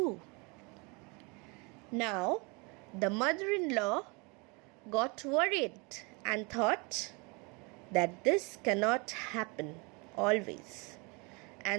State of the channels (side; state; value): left; quieter; 29.7 dB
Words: Now, the mother-in-law got worried and thought that this cannot happen always.